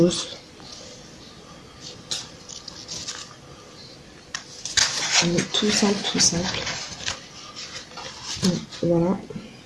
Tout simple, tout simple. Voilà.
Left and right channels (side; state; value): both; identical; correlation 1.00